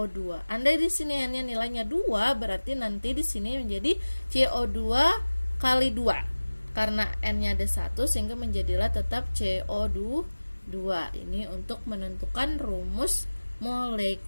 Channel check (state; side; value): inverted; both; correlation -1.00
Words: Andai di sini N-nya nilainya 2, berarti nanti di sini menjadi CO2 kali 2. Karena N-nya ada 1, sehingga menjadilah tetap CO2 2. Ini untuk menentukan rumus